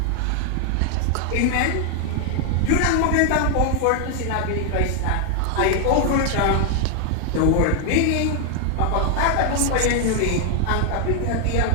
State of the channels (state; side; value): different; both; correlation 0.00